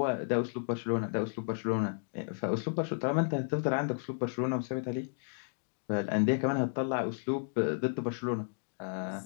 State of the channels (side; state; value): right; silent; digital silence